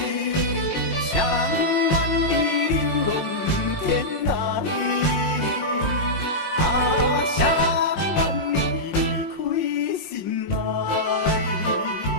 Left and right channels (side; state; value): right; late; 5.6 ms